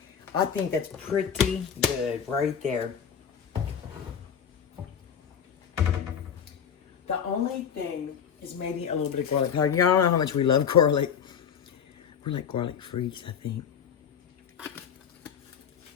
think that's pretty good right there. The only thing is maybe a little bit of garlic powder. Y'all know how much we love garlic. We're like garlic freaks, I think.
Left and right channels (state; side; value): quieter; right; 7.7 dB